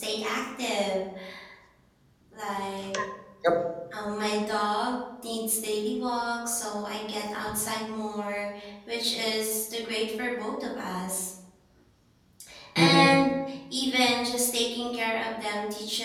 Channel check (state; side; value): identical; both; correlation 1.00